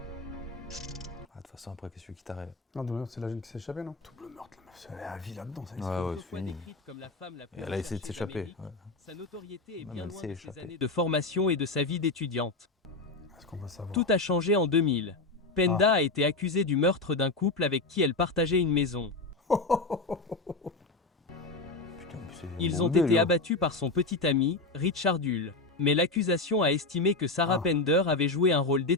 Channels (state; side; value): quieter; right; 3.3 dB